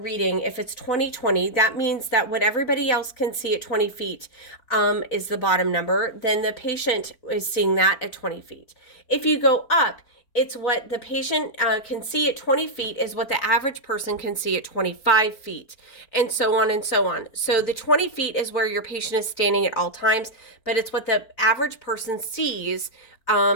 if it's 20/20, that means that what everybody else can see at 20 feet is the bottom number. Then the patient is seeing that at 20 feet. If you go up, it's what the patient can see at 20 feet is what the average person can see at 25 feet, and so on and so on. So the 20 feet is where your patient is standing at all times, but it's what the average person sees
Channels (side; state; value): right; late; 4.4 ms